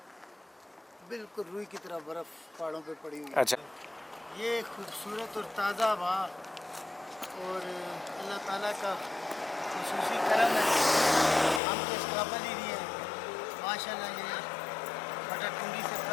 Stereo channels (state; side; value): drops out; right; at 11.6 s